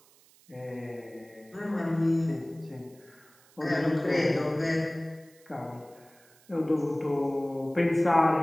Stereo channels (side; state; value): right; noise; hiss, 28 dB below the sound